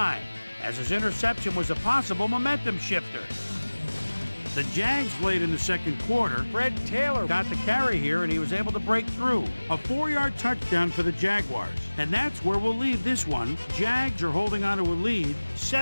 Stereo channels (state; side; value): inverted; both; correlation -1.00